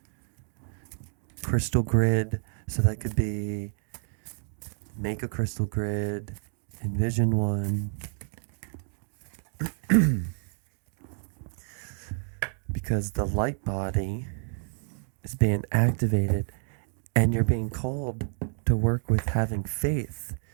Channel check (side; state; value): left; silent; 58 dB below the other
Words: crystal grid. So that could be make a crystal grid, envision one. Because the light body is being activated, and you're being called to work with having faith,